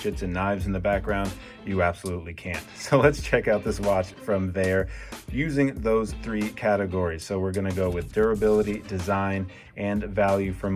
and knives in the background? You absolutely can't. So let's check out this watch from Vaer using those three categories. So we're gonna go with durability, design, and value for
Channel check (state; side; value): identical; both; correlation 1.00